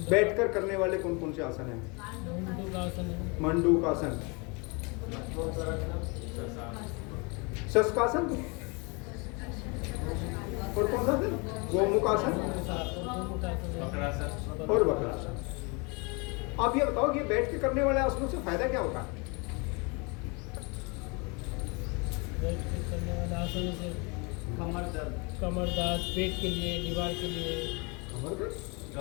बैठकर करने वाले कौन कौन से आसन हैं? मंडूकासन है। मंडूकासन, शशकासन, और कौन सा आसन? गोमुखासन और वक्रासन। आप ये बताओ कि बैठ के करने वाले आसनों से फायदा क्या होता है? बैठ के करने वाले आसन से कमर दर्द, पेट के लिए, दीवार के लिए।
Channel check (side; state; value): right; quieter; 30.3 dB